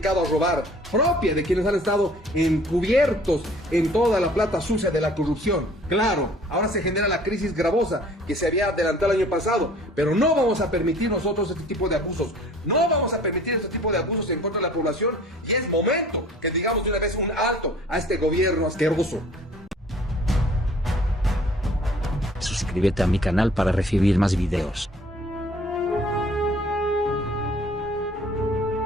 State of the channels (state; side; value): normal; both; correlation 0.52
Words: a robar, propia de quienes han estado encubiertos en toda la plata sucia de la corrupción. Claro, ahora se genera la crisis gravosa que se había adelantado el año pasado, pero no vamos a permitir nosotros este tipo de abusos, no vamos a permitir este tipo de abusos en contra de la población, y es momento que digamos de una vez un alto a este gobierno asqueroso. Suscríbete a mi canal para recibir más videos.